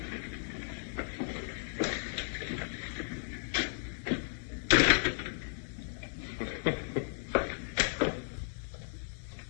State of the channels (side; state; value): right; silent; digital silence